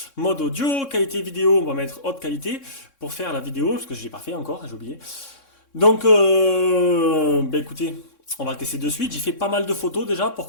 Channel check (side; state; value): right; late; 3.6 ms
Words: mode audio, qualité vidéo, on va mettre haute qualité pour faire la vidéo, parce que je l'ai pas fait encore, j'ai oublié. Donc, écoutez, on va le tester de suite. J'ai fait pas mal de photos déjà pour